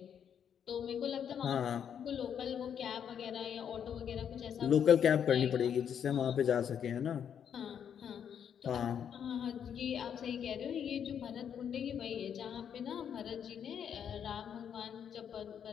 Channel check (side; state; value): right; quieter; 8.4 dB